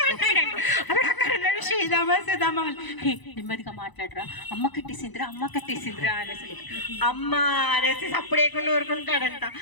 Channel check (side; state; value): right; late; 1.0 ms